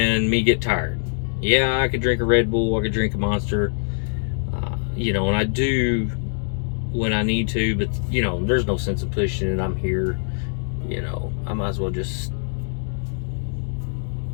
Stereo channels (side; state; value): right; silent; 63 dB below the other